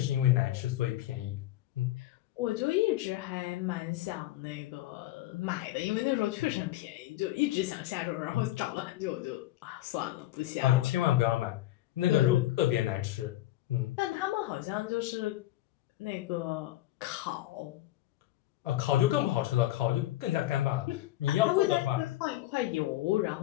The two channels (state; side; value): quieter; right; 15.2 dB